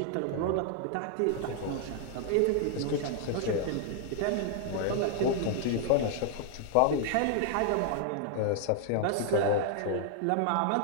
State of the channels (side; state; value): both; different; correlation 0.00